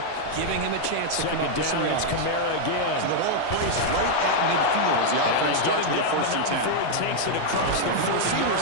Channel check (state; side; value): different; both; correlation -0.01